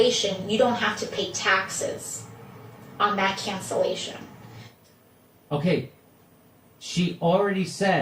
you don't have to pay taxes on that cancellation. Okay, she already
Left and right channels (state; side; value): identical; both; correlation 1.00